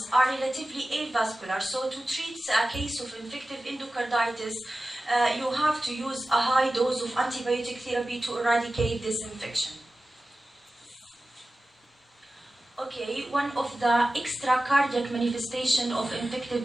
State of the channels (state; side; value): normal; both; correlation 0.95